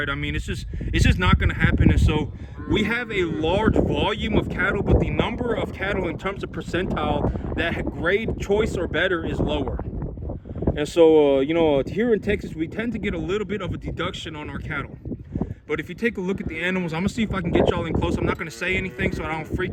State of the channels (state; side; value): identical; both; correlation 1.00